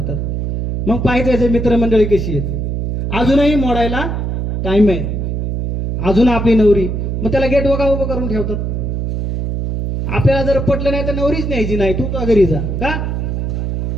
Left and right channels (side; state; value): right; noise; hum, 2 dB below the sound